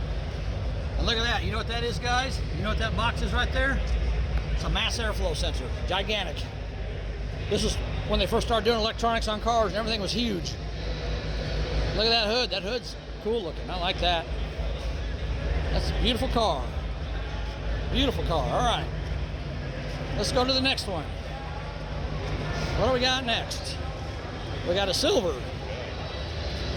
And look at that. You know what that is, guys? You know what that box is right there? It's a mass airflow sensor. Gigantic. This is when they first started doing electronics on cars and everything was huge. Look at that hood. That hood's cool looking. I like that. That's a beautiful car. Beautiful car. All right. Let's go to the next one. What do we got next? We got a silver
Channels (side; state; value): both; identical; correlation 1.00